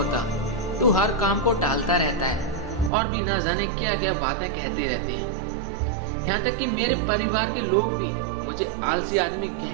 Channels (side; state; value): left; drops out; at 2.9 s